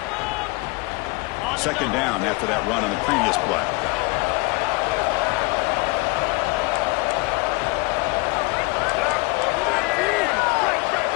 Second down after that run on the previous play.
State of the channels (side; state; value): right; quieter; 25.9 dB